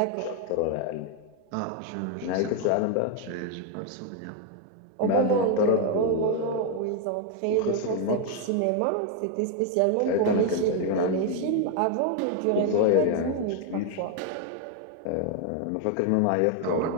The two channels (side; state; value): both; different; correlation 0.01